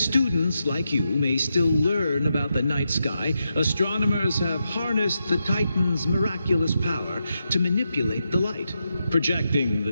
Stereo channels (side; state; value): both; inverted; correlation -0.85